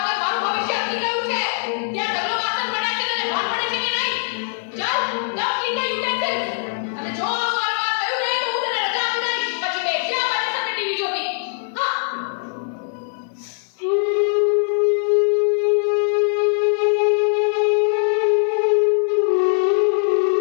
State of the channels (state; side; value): silent; right; digital silence